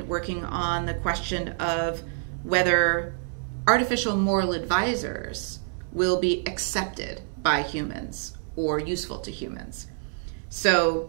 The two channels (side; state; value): left; silent; digital silence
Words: working on the question of whether artificial moral advisors will be accepted by humans or useful to humans. So